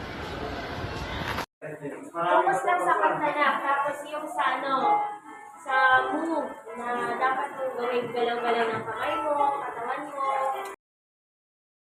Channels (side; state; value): both; identical; correlation 1.00